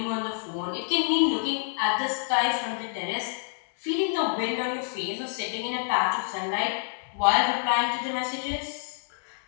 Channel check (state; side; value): silent; right; 60 dB below the other